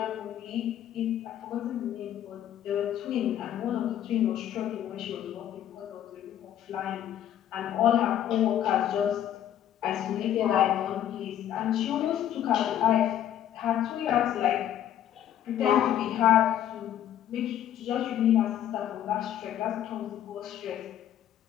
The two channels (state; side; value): quieter; right; 11.0 dB